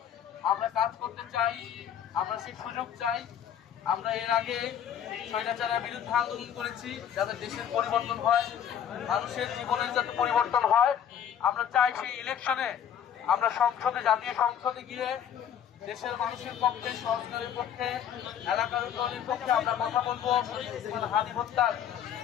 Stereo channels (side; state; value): right; quieter; 9.1 dB